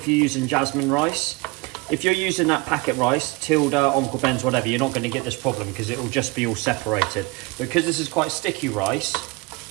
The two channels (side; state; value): left; quieter; 25.6 dB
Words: you're using jasmine rice. If you're using that packet rice, Tilda, Uncle Ben's, whatever, you're not going to get this problem because it will just be all separated. Because this is quite sticky rice,